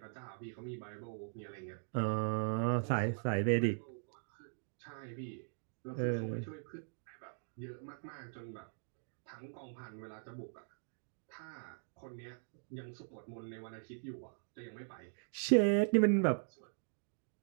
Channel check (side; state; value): left; silent; digital silence